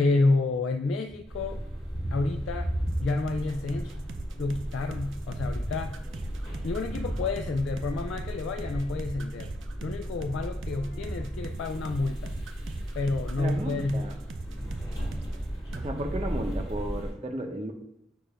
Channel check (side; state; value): both; normal; correlation 0.80